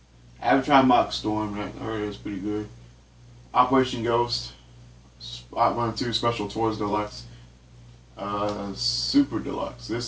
Avatar Mock Storm, I heard it's pretty good. Operation Ghost, OutRun 2 Special Tours Deluxe. Super Deluxe.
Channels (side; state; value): both; identical; correlation 1.00